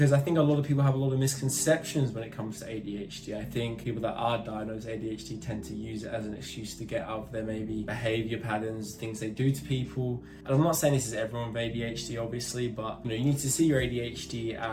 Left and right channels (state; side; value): identical; both; correlation 1.00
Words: I think a lot of people have a lot of misconceptions when it comes to ADHD. I think people that are diagnosed ADHD tend to use it as an excuse to get out of their maybe behavior patterns, things they do to people. And I'm not saying this is everyone with ADHD obviously, but you need to see your ADHD